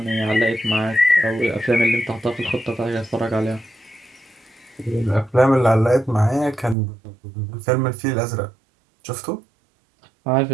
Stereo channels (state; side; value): drops out; left; at 6.8 s